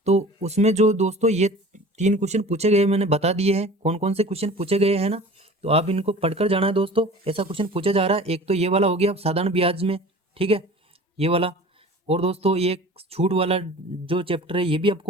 तो उसमें जो दोस्तों ये 3 क्वेश्चन पूछे गए मैंने बता दिए हैं कौन कौन से क्वेश्चन पूछे गए हैं ना। तो आप इनको पढ़कर जाना है दोस्तों। ऐसा क्वेश्चन पूछा जा रहा है, एक तो ये वाला हो गया साधारण ब्याज में, ठीक है, ये वाला। और दोस्तों ये छूट वाला जो चैप्टर है ये भी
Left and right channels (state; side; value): normal; both; correlation 0.41